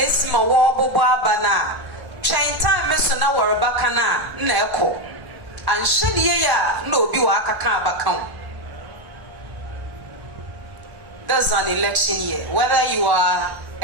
my war bana chain time na warabakana neko and should no be waka. That's an election year. Whether you are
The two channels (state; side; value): late; left; 1.0 ms